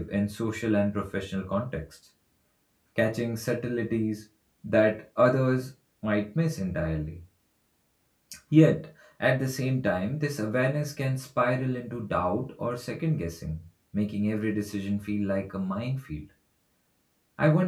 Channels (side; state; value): both; identical; correlation 1.00